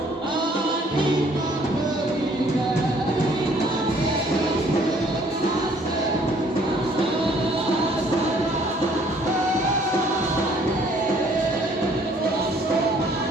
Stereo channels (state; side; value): normal; both; correlation 0.60